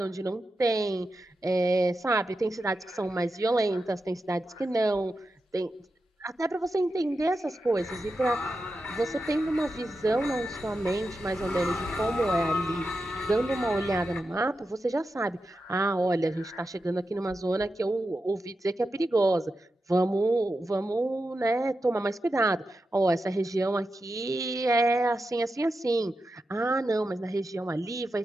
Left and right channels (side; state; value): both; normal; correlation 0.89